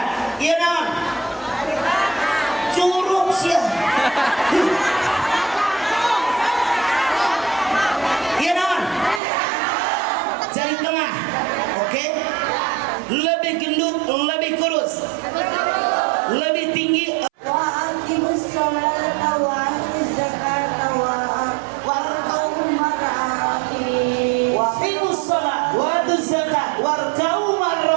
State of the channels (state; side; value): drops out; left; at 9.2 s